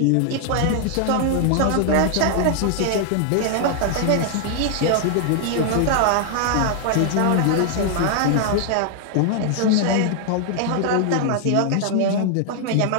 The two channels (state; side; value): different; both; correlation 0.00